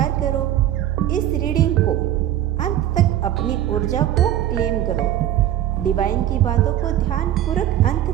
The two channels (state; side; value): quieter; left; 12.0 dB